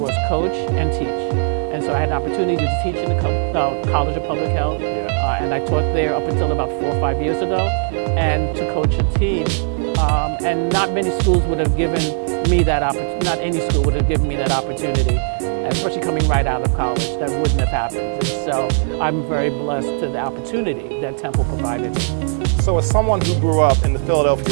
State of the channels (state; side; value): silent; left; 67 dB below the other